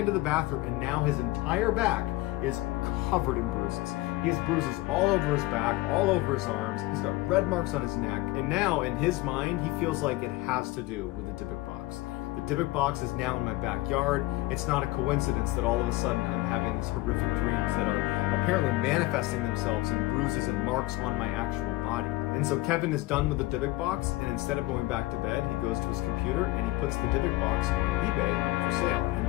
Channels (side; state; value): right; quieter; 19.3 dB